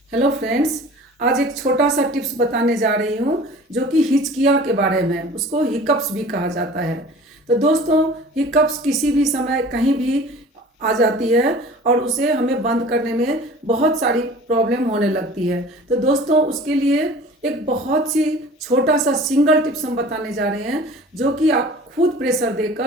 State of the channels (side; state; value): both; normal; correlation 0.44